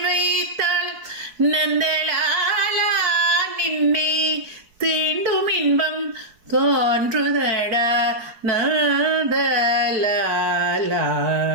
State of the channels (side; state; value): left; late; 4.7 ms